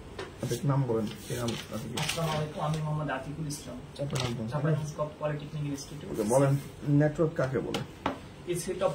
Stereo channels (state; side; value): identical; both; correlation 1.00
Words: নাম বলেন। আমি মোহাম্মদ আতিকুল ইসলাম, পলিটেকনিক ইনস্টিটিউট। বলেন নেটওয়ার্ক কাকে বলে? A